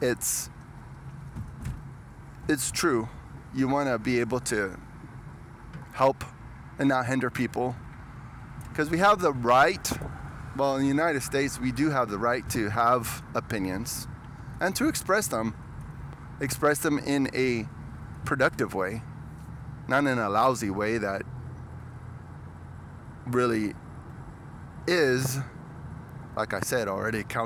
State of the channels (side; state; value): both; identical; correlation 1.00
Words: it's true. You want to be able to help and not hinder people, because we have the right. Well, in the United States, we do have the right to have opinions and to express them in a productive way, not in a lousy way that really is, like I said already,